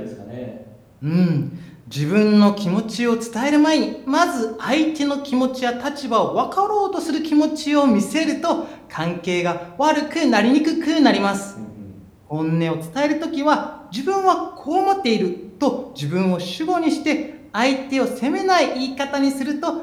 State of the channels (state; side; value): identical; both; correlation 1.00